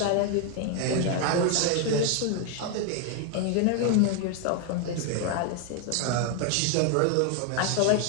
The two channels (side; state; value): both; different; correlation 0.01